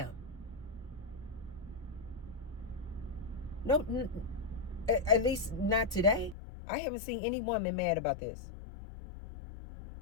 No, at least not today. I haven't seen any woman mad about this.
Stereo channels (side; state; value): right; drops out; at 6.4 s